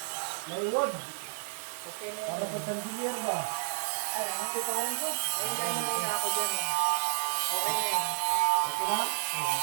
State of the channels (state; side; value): silent; left; 56 dB below the other